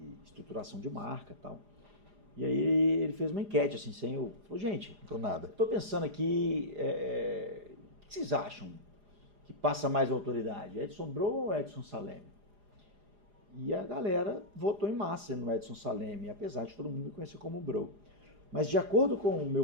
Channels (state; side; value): late; left; 4.9 ms